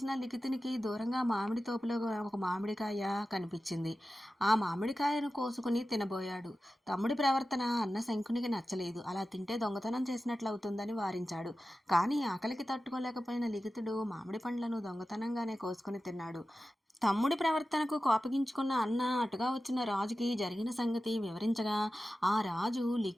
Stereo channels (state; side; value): normal; both; correlation 0.94